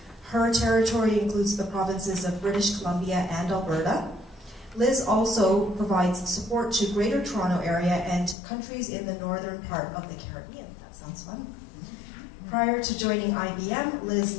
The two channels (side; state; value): right; drops out; at 8.3 s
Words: Her territory includes the provinces of British Columbia and Alberta. Liz also provides support to Greater Toronto Area and countries in the northern part of the Caribbean. That sounds fun. Prior to joining IBM, Liz